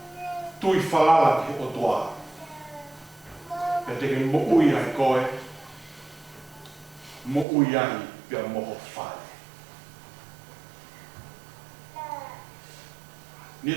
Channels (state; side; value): drops out; left; at 7.5 s